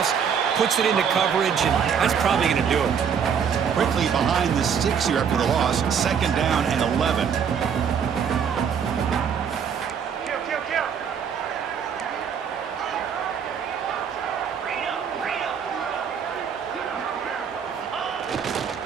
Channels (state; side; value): quieter; left; 7.3 dB